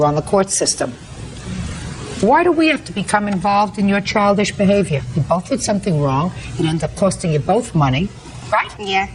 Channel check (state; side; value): identical; both; correlation 1.00